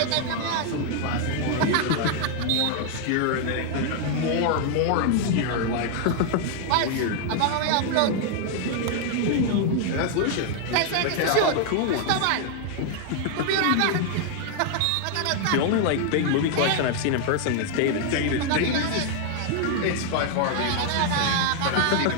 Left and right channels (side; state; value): both; different; correlation 0.00